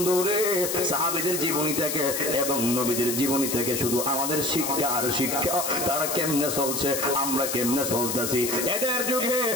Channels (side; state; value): left; noise; hiss, 2 dB below the sound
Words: সাহাবীদের জীবনী থেকে এবং নবীদের জীবনী থেকে শুধু আমাদের শিক্ষা আর শিক্ষা তারা কেমনে চলছে আমরা কেমনে চলতেছি এদের যুগে